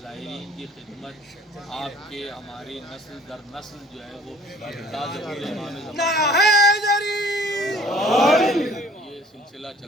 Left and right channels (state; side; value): normal; both; correlation 0.52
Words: زائرین کی خدمت آپ کے ہماری نسل در نسل جو ہے وہ یہ سلسلہ